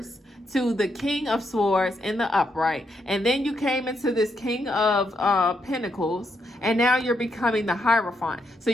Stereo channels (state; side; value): normal; both; correlation 0.79